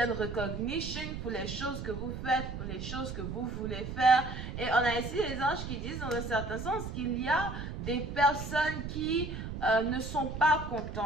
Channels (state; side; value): noise; right; rumble, 7 dB below the sound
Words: recognition pour les choses que vous faites, pour les choses que vous voulez faire. Et on a ici les anges qui disent dans un certain sens qu'il y a des personnes qui ne sont pas